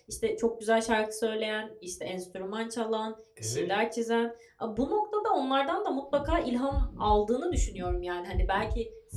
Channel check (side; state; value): both; identical; correlation 1.00